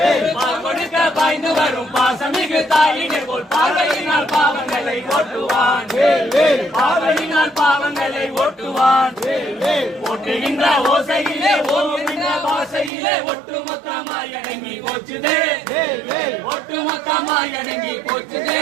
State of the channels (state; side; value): drops out; left; at 12.9 s